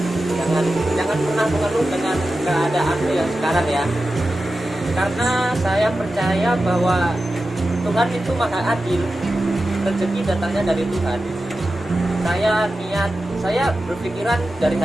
Jangan pernah mengeluh dengan keadaan yang sekarang ya, karena saya percaya bahwa Tuhan itu maha adil. Rezeki datangnya dari Tuhan. Saya berpikiran dari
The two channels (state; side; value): normal; both; correlation 0.93